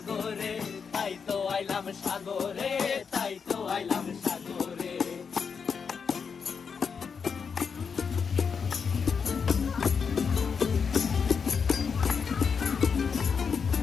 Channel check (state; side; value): quieter; right; 6.0 dB